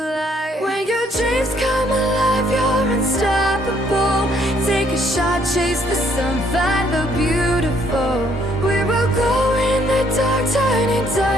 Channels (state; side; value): normal; both; correlation 0.66